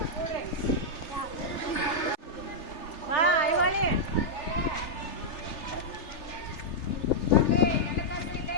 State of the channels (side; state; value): right; late; 3.4 ms